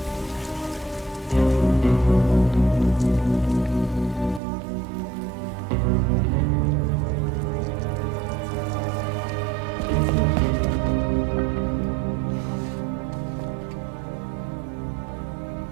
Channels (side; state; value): left; drops out; at 4.4 s